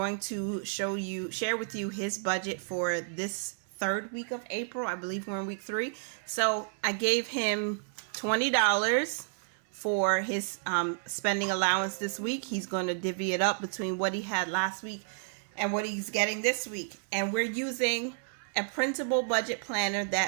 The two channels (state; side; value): silent; left; 57 dB below the other